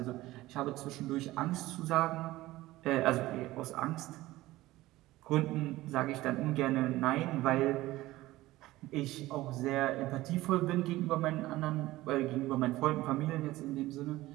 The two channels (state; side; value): quieter; left; 17.5 dB